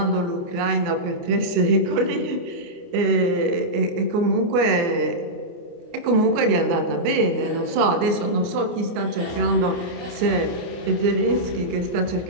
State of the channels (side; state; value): left; late; 29 ms